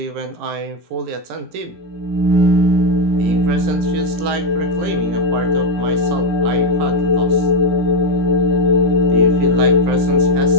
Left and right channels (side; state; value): left; late; 18 ms